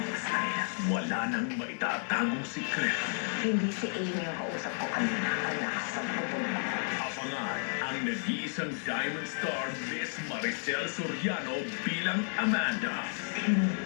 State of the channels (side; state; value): right; silent; 56 dB below the other